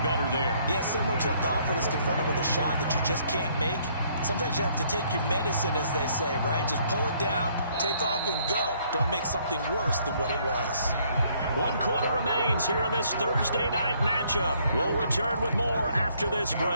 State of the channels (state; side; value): inverted; both; correlation -0.66